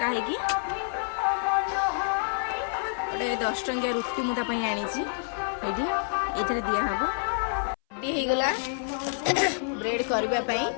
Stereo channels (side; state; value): right; silent; 58 dB below the other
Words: है कि ओडे 10 टंकिया रुटी मुता पई आनी छी एडी एथरे दिया हबो डी हे गला ब्रेड करबा पई